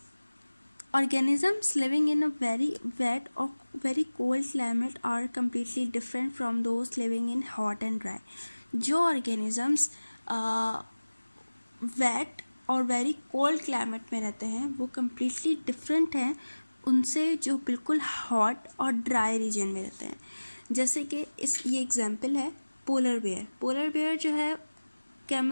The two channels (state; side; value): inverted; both; correlation -1.00